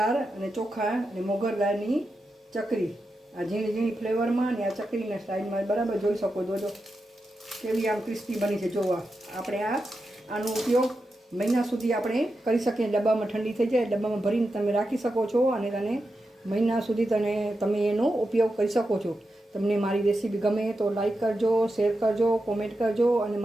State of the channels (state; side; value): normal; both; correlation 0.89